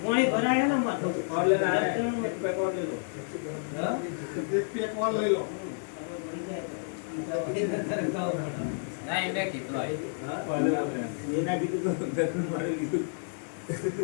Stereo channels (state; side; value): silent; right; digital silence